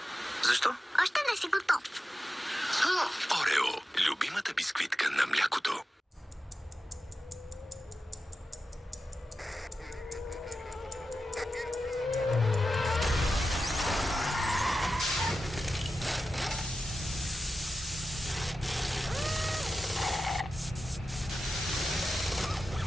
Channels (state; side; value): normal; both; correlation 0.92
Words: Защо? още не си готов. Орео. Любимата бисквитка на млякото.